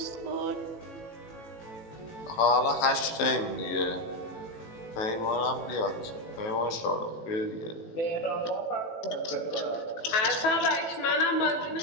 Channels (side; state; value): right; late; 18 ms